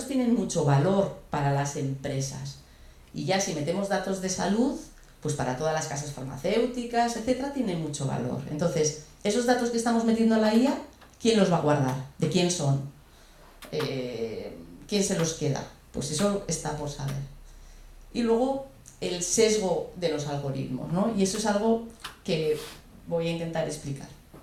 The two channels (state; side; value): identical; both; correlation 1.00